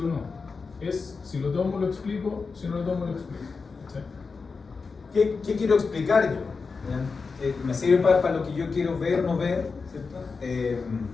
no. Es si lo tomo lo explico, si no lo tomo lo explico. ¿Sí? ¿Qué quiero explicar yo? ¿Me sirve para lo que yo quiero ver o no ver? ¿Cierto?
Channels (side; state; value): right; quieter; 4.7 dB